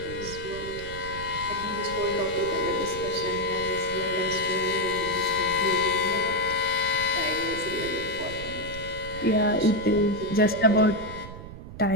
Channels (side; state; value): right; noise; rumble, 12 dB below the sound